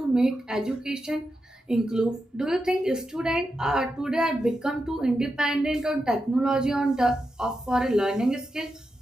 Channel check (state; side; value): normal; both; correlation 0.88